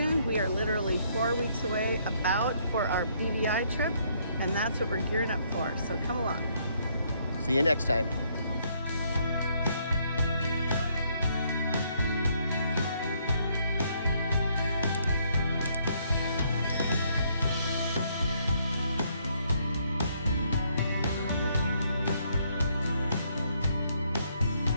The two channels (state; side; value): inverted; both; correlation -0.70